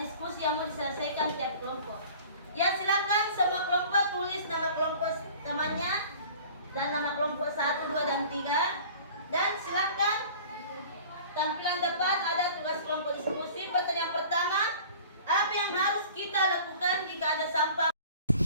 yang mau diselesaikan tiap kelompok. Ya, silakan semua kelompok tulis nama kelompok temannya dan nama kelompok 1, 2, dan 3. Dan silakan tampilan depan ada tugas kelompok diskusi. Pertanyaan pertama, apa yang harus kita lakukan jika ada sampah?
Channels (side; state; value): both; inverted; correlation -0.45